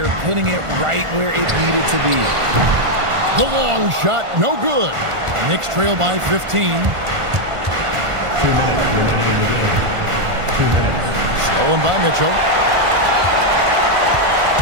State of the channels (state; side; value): late; left; 1.5 ms